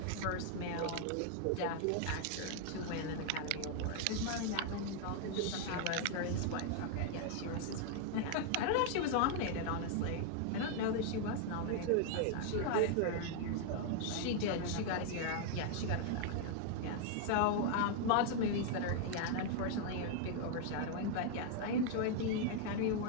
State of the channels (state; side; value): different; both; correlation 0.00